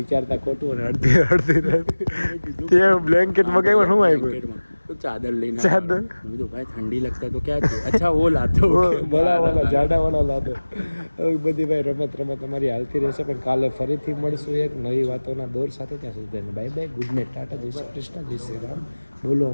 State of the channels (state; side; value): inverted; both; correlation -1.00